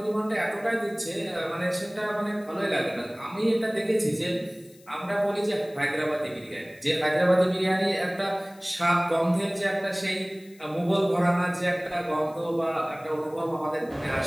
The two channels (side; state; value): left; noise; hiss, 27 dB below the sound